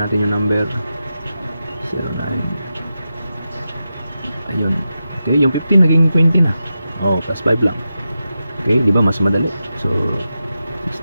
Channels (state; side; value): inverted; both; correlation -0.90